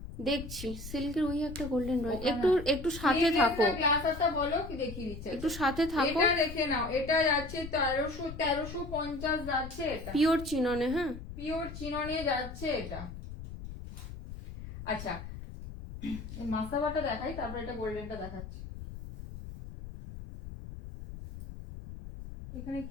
দেখছি সিল্কের ওই একটা গোল্ডেন রয়েছে, একটু একটু সাথে থাকো, গ্লাস হাতা বলো কি দেখিয়ে দিচ্ছে, একটু সাথে থাকো। এটা দেখে নাও, এটা যাচ্ছে 1350 যাচ্ছে এটা, পিওর চিননে, হ্যাঁ পিওর চিননে যাচ্ছে এটা। আচ্ছা মাসাবাটা দেখাই, তারপর এটা গোল্ডেনটা দেখাচ্ছি। এখানে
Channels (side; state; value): left; noise; rumble, 11 dB below the sound